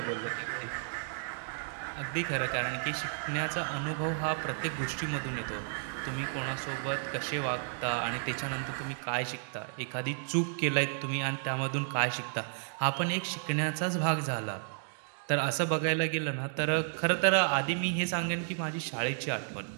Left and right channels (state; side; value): silent; left; digital silence